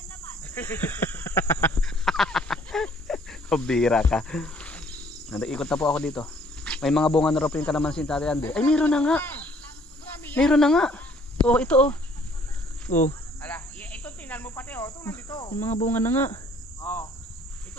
Bira ka. Nag-ikot na po ako dito. May mga bunga na raw po yung kalamansi ni Tatay Andy. Ay, meron na nga. Meron na nga. Oh, ito oh. Oh, Ala, ito tingnan mo pati oh, ito nandito. yung mga bunga na nga. Oh.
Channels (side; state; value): both; normal; correlation 0.60